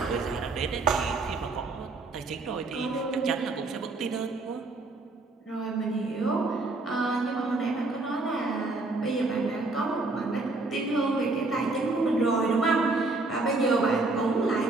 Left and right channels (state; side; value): quieter; left; 3.3 dB